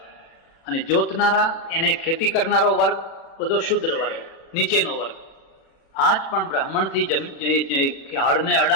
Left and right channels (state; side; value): late; right; 36 ms